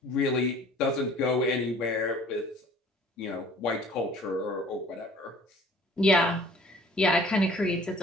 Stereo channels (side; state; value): both; normal; correlation 0.52